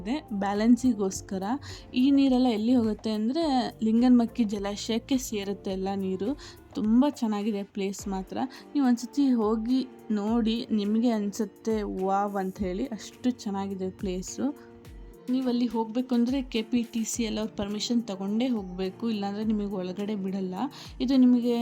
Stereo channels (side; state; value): both; identical; correlation 1.00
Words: ಬ್ಯಾಲೆನ್ಸಿಗೋಸ್ಕರ. ಈ ನೀರೆಲ್ಲ ಎಲ್ಲಿ ಹೋಗುತ್ತೆ ಅಂದರೆ ಲಿಂಗನಮಕ್ಕಿ ಜಲಾಶಯಕ್ಕೆ ಸೇರುತ್ತೆ ಎಲ್ಲ ನೀರು. ತುಂಬ ಚೆನ್ನಾಗಿದೆ ಪ್ಲೇಸ್ ಮಾತ್ರ. ನೀವು ಒಂದ್ಸತಿ ಹೋಗಿ ನೋಡಿ, ನಿಮಗೆ ಅನಿಸುತ್ತೆ ವಾವ್ ಅಂತ ಹೇಳಿ. ಅಷ್ಟು ಚೆನ್ನಾಗಿದೆ ಪ್ಲೇಸು. ನೀವು ಅಲ್ಲಿ ಹೋಗಬೇಕು ಅಂದರೆ KPTC ಎಲ್ಲ ಅವ್ರ ಪರ್ಮಿಷನ್ ತೊಗೊಂಡೇ ಹೋಗಬೇಕು, ಇಲ್ಲಾಂದರೆ ನಿಮಗೆ ಒಳಗಡೆ ಬಿಡಲ್ಲ. ಇದು ನಿಮಗೆ